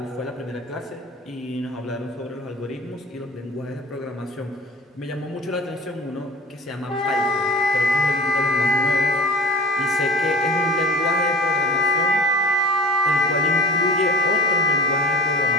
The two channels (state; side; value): normal; both; correlation 0.39